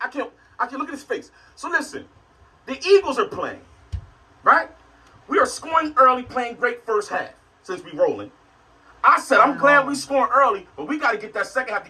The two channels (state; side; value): identical; both; correlation 1.00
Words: look at his face. So listen, the Eagles are playing, right? We are scoring early, playing great first half since we rolling. I said, I'm glad we scoring early, but we got to get that second half